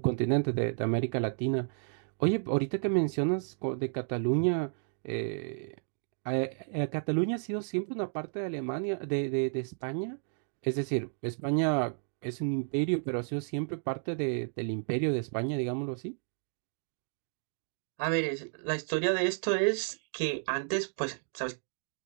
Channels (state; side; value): silent; left; digital silence